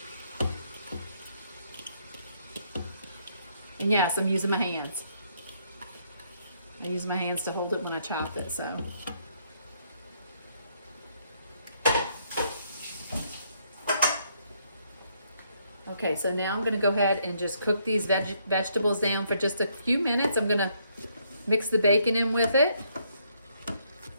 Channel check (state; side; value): inverted; both; correlation -0.71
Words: And yes, I'm using my hands. I use my hands to hold it when I chop it, so. Okay, so now I'm going to go ahead and just cook these vegetables down for just a few minutes. I'm going to mix the bacon in with it.